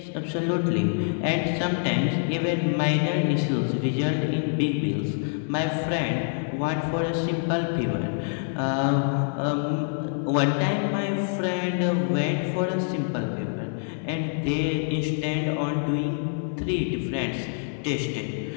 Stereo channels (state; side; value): silent; right; digital silence